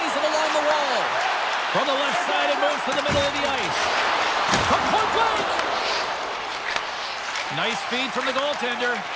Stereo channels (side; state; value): both; identical; correlation 1.00